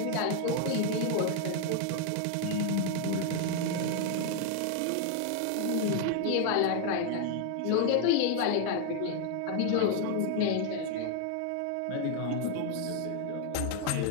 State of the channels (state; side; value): different; both; correlation 0.01